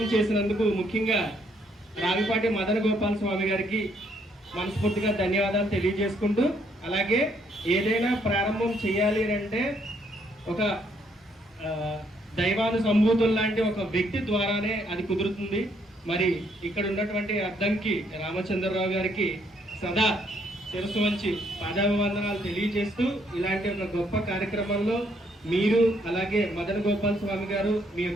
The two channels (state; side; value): normal; both; correlation 0.70